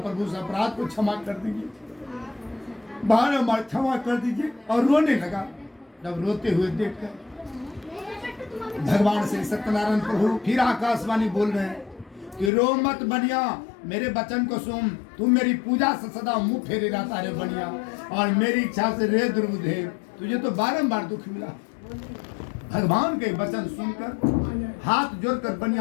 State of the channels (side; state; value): right; drops out; at 12.5 s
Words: उस अपराध को क्षमा कर दीजिए, बारंबार क्षमा कर दीजिए। और रोने लगा। जब रोते हुए देखकर भगवान श्री सत्यनारायण प्रभु फिर आकाशवाणी बोल रहे हैं कि रो मत बनिया, मेरे वचन को सुन। तू मेरी पूजा से सदा मुंह फेरे रहता रे बनिया, और मेरी इच्छा से रे दुर्बुद्धे तुझे तो बारंबार दुख मिला। भगवान के वचन सुनकर हाथ जोड़कर